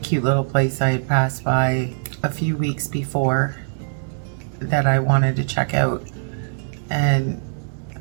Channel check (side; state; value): left; silent; digital silence